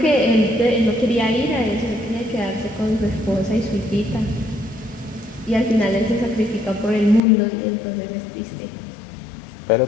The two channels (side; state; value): right; drops out; at 7.2 s